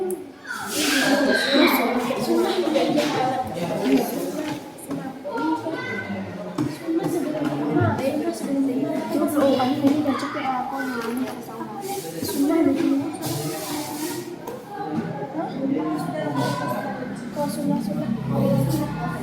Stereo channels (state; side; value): identical; both; correlation 1.00